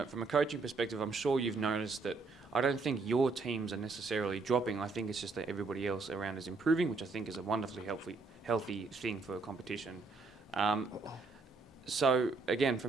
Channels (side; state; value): left; quieter; 4.0 dB